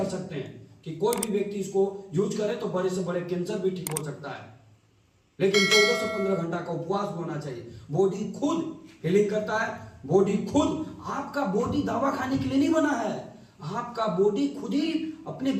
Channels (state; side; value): identical; both; correlation 1.00